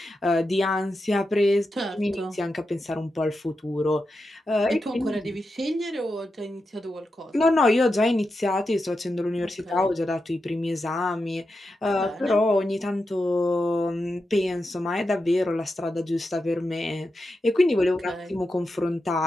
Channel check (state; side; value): normal; both; correlation 0.89